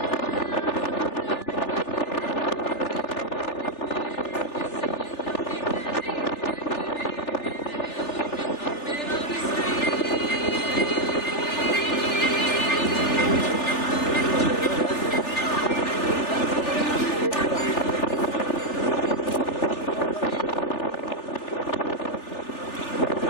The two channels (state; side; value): late; right; 3.4 ms